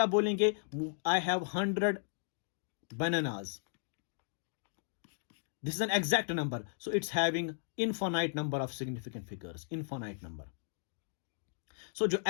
आप बोलेंगे I have 100 bananas, this is an exact number, so it's having infinite number of significant figures, infinite number. So जो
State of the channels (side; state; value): right; silent; digital silence